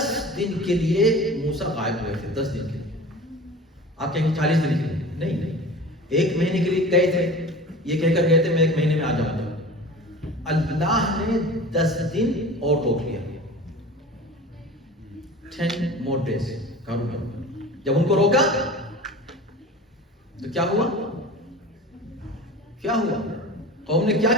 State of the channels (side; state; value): both; normal; correlation 0.37